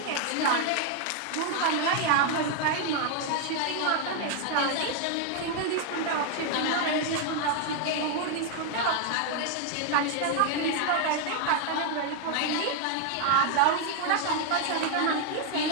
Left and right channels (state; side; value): different; both; correlation 0.00